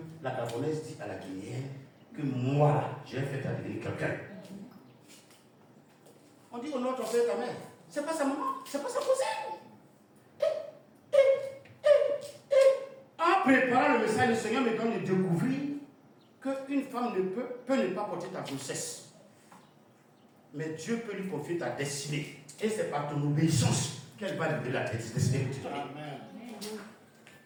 la gabonaise dit à la guinéenne que moi, là, j'ai fait à devenir quelqu'un? On dit au nom de ton père et ta mère. C'est pas sa maman, c'est pas sa cousine. En préparant le message, le Seigneur me donne de découvrir qu'une femme peut ne pas porter ta grossesse. Mais Dieu peut lui confier ta destinée. Et c'est par ton obéissance qu'elle va libérer la destinée que tu donnes. Amen.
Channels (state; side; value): identical; both; correlation 1.00